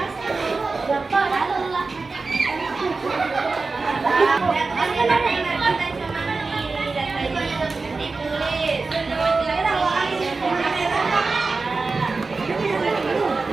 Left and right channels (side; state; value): left; quieter; 4.0 dB